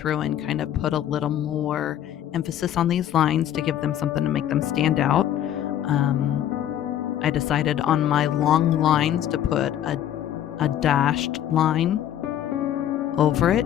and kind of put a little more emphasis on these lines to give them something to make them stand out. I decided on my long lines to put a dashed line over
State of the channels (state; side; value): quieter; right; 11.1 dB